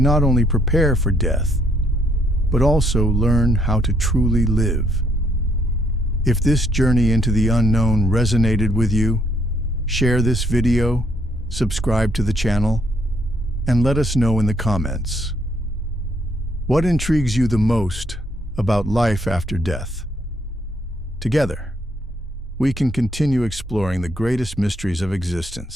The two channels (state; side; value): normal; both; correlation 0.71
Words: not only prepare for death, but also learn how to truly live. If this journey into the unknown resonated with you, share this video, subscribe to the channel, and let us know in the comments. What intrigues you the most about life after death? Together, we can continue exploring the greatest mysteries of